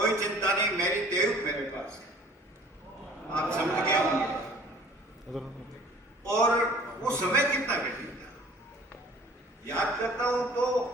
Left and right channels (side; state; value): both; normal; correlation 0.51